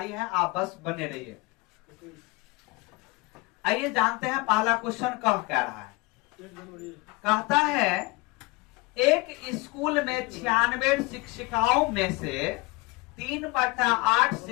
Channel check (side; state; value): right; quieter; 24.5 dB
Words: है, आप बस बने रहिए। आइए जानते हैं पहला क्वेश्चन कह रहा है। कहता है एक स्कूल में 96 शिक्षिकाओं में से 3/8